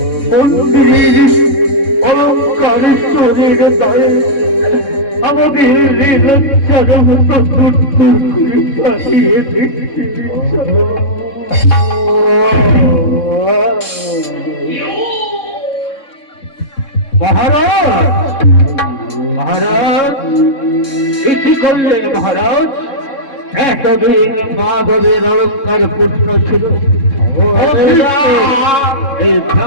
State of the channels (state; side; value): late; right; 3.7 ms